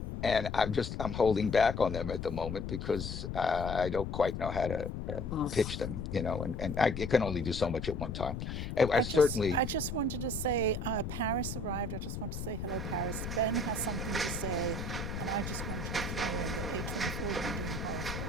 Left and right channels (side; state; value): left; noise; rumble, 5 dB below the sound